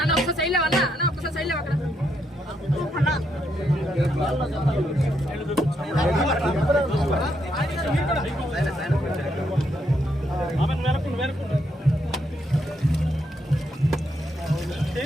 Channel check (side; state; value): both; normal; correlation 0.77